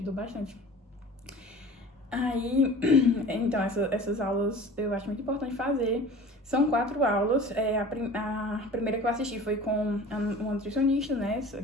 bastante. Aí, então, essas aulas eu acho muito importante fazer. São 4 aulas. A primeira que eu assisti foi com uma nutricionista, né,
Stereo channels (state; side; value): normal; both; correlation 0.41